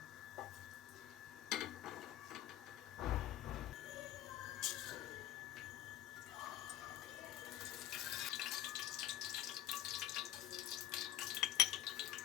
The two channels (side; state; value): right; quieter; 13.0 dB